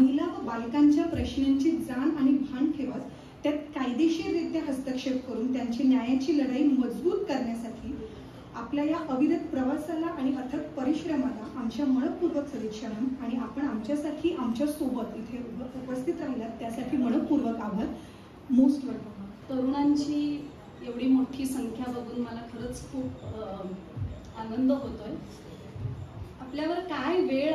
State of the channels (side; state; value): both; identical; correlation 1.00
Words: व बालकांच्या प्रश्नांची जाण आणि भान ठेवत त्यात कायदेशीररित्या हस्तक्षेप करून त्यांची न्यायाची लढाई मजबूत करण्यासाठी आपल्या या अविरत प्रवासाला आणि अथक परिश्रमाला आमच्या मनपूर्वक सदिच्छा आणि आपण आमच्यासाठी आमच्या सोबत इथे उपस्थित राहिलात त्यासाठी मनपूर्वक आभार. Most welcome. तरुणांची एवढी मोठी संख्या बघून मला खरंच खूप आनंद होतोय. आपल्यावर काय वेळ